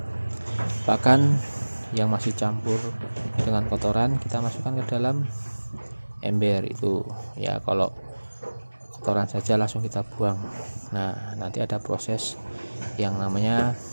pakan yang masih campur dengan kotoran kita masukkan ke dalam ember itu ya. Kalau kotoran saja langsung kita buang. Nah, nanti ada proses yang namanya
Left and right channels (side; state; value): both; inverted; correlation -1.00